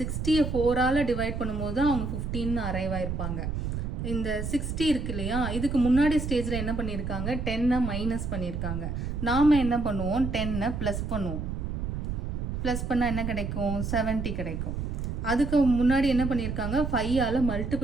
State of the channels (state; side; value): noise; right; rumble, 3 dB below the sound